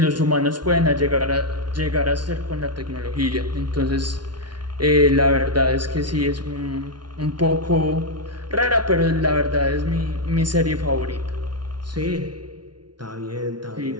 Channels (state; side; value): late; left; 0.70 ms